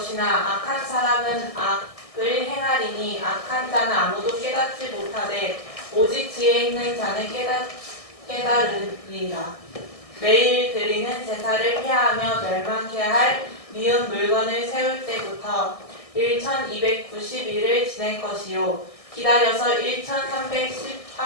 악한 사람은 악을 행하리니 악한 자는 아무도 깨닫지 못하되 오직 지혜 있는 자는 깨달으리라. 매일 드리는 제사를 피하며 멸망케 할 미운 물건을 세울 때부터 1290일을 지낼 것이요 기다려서 1300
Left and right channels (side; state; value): right; late; 1.6 ms